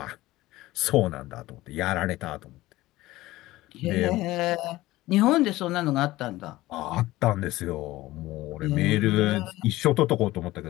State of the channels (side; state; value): right; quieter; 17.6 dB